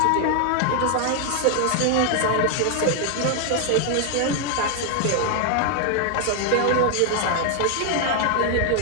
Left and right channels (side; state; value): both; different; correlation 0.00